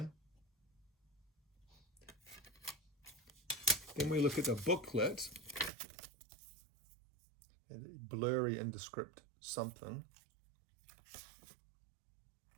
Then we look at the booklet. Blurry, indescript something.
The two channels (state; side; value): drops out; left; at 5.7 s